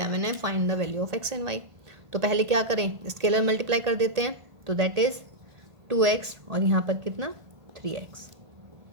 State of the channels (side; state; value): left; late; 1.5 ms